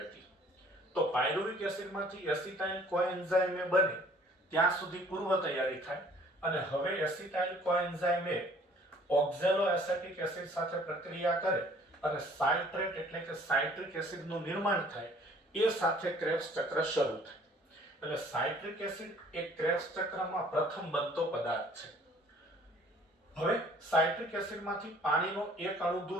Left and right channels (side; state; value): both; normal; correlation 0.55